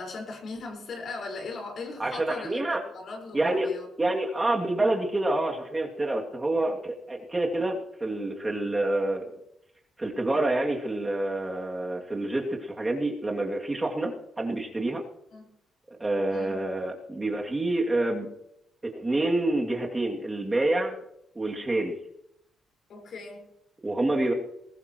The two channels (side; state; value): both; normal; correlation 0.92